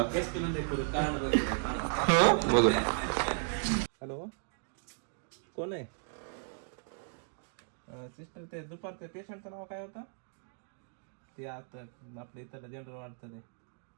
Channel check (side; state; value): left; silent; 54 dB below the other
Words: हॅलो, कोण आहे? सिस्टर, ते दुपारचं पेशंटचं नाव काय होतं? ते आता आपल्या इथं जनरल वाटतं ते.